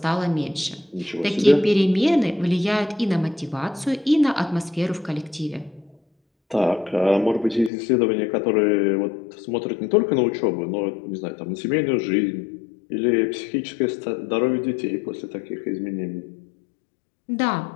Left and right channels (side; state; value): right; drops out; at 7.7 s